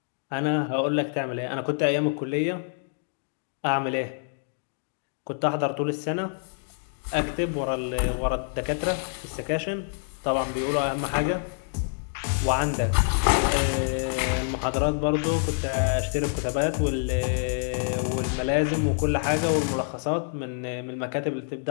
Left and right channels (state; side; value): silent; right; digital silence